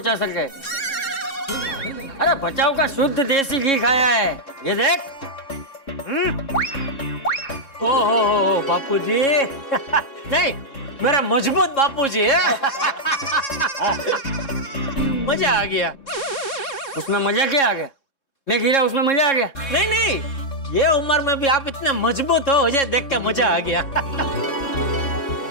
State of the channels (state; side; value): late; right; 3.6 ms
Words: सके। अरे बचाव का शुद्ध देसी घी खाया है, ये देख। ओ बापूजी। नहीं, मेरा मजबूत बापूजी है। मजा आ गया। उसमें मजा क्या आ गया? मैं गिरा उसमें मजा आ गया? नहीं, ये उम्र में भी आप इतने मजबूत हो, मुझे देख के मजा आ गया।